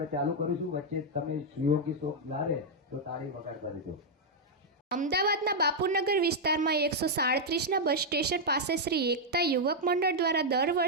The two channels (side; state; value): both; normal; correlation -0.02